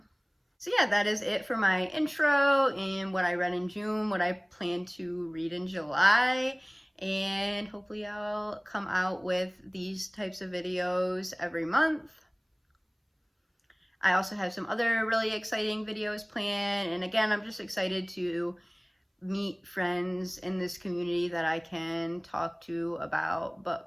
So yeah, that is it for my intro and what I read in June, what I plan to read in July, and hopefully I'll come out with these types of videos every month. I also have some other really exciting videos planned, and again, I'm just excited to meet friends in this community that I can talk to about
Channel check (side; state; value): both; identical; correlation 1.00